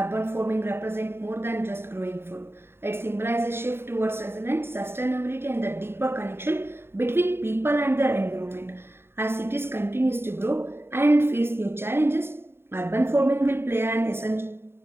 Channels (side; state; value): left; late; 0.11 ms